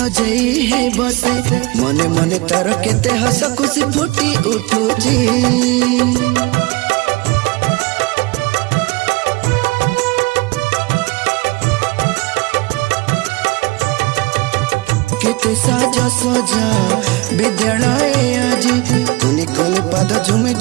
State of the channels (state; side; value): quieter; left; 22.9 dB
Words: है बसे मने मने तार केते हस खुशी फुटी उठुची केते साजा सजा विद्यालय आजी कुनी कुनी पाद झुमी